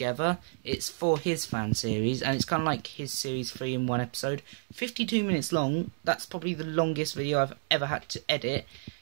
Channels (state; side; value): silent; left; digital silence